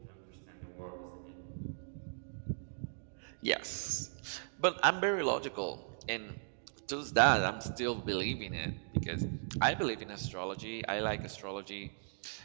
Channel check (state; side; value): silent; left; digital silence